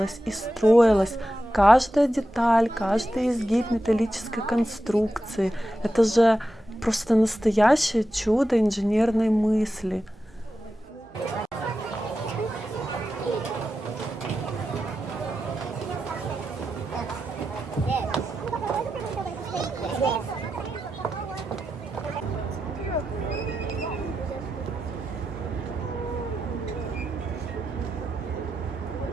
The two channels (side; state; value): both; normal; correlation 0.90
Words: и строилось. Каждая деталь, каждый изгиб металлической конструкции. Это же просто настоящее чудо инженерной мысли.